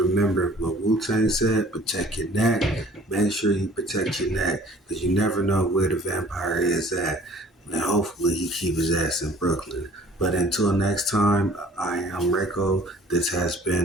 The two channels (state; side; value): normal; both; correlation 0.52